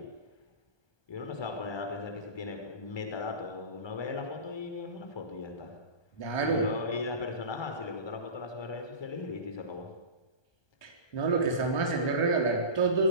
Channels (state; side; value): late; right; 1.2 ms